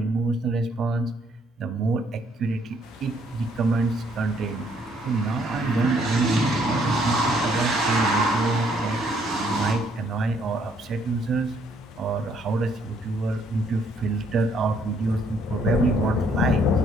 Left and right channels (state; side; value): normal; both; correlation 0.67